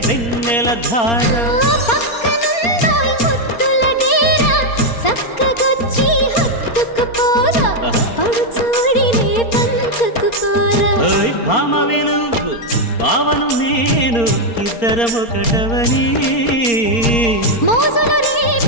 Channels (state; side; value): late; right; 4.3 ms